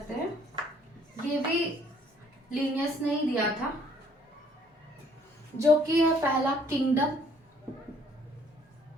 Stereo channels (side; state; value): both; normal; correlation 0.61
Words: हैं। ये भी लिनियस ने ही दिया था, जो कि है पहला किंगडम,